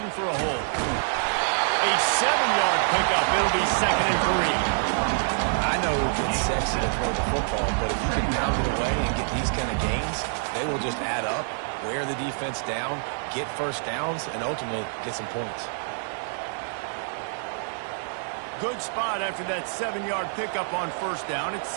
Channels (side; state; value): left; silent; digital silence